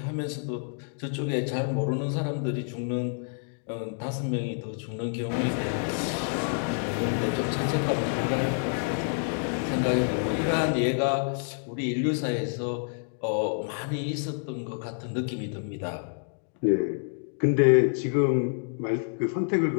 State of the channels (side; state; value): right; silent; digital silence